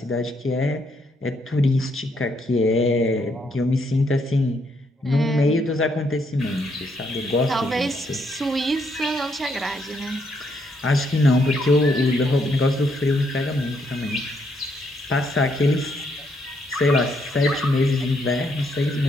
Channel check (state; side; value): normal; both; correlation 0.74